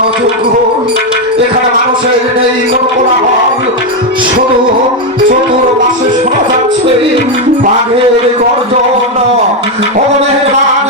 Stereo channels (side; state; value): both; normal; correlation 0.05